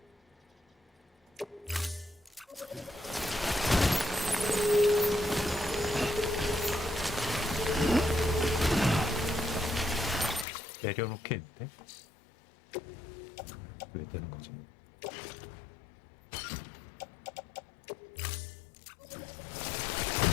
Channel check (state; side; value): drops out; right; at 10.5 s